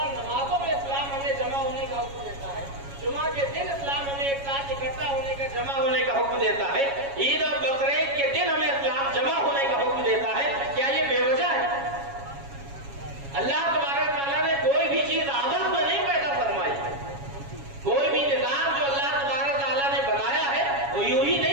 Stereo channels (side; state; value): left; late; 7.2 ms